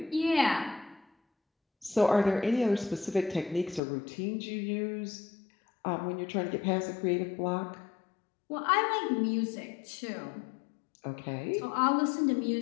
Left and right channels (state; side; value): drops out; right; at 3.8 s